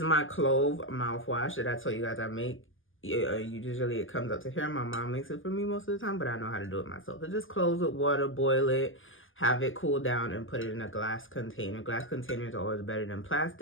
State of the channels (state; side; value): late; right; 0.58 ms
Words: my clove mouthwash that I told you guys I make. Usually it comes up to here. My mom makes it for me most of the time, but I know how to do it myself. So just cloves with water, boil it, have it cool down, and put it in a glass container. Glass containers are always better than